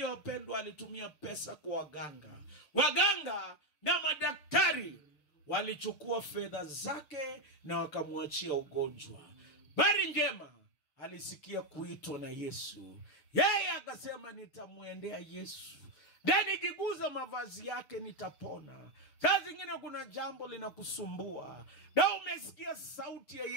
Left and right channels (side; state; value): right; late; 6.8 ms